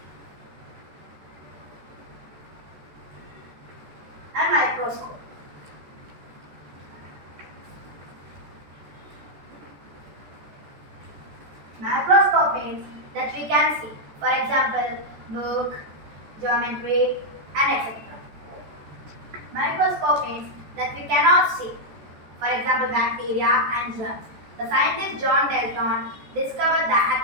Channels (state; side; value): late; left; 14 ms